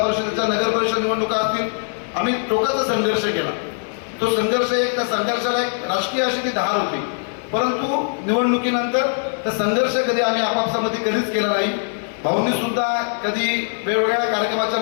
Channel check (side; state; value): right; silent; digital silence